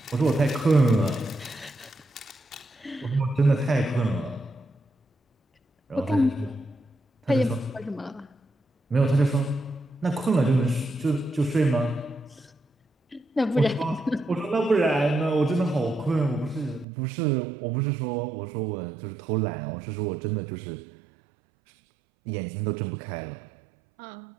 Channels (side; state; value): left; drops out; at 16.9 s